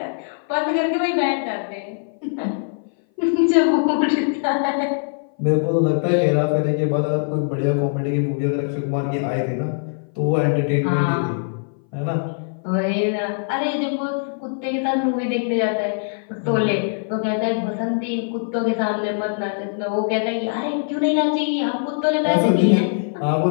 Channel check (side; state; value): right; silent; 58 dB below the other